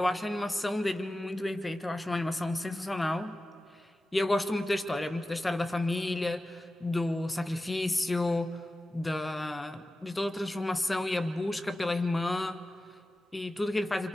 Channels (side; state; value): both; normal; correlation 0.94